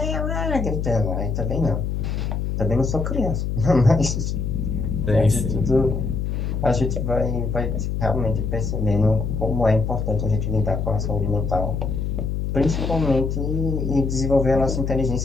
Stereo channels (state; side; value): noise; left; hum, 1 dB below the sound